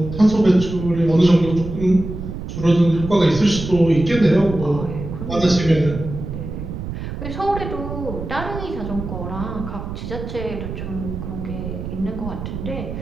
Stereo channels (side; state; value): right; noise; rumble, 7 dB below the sound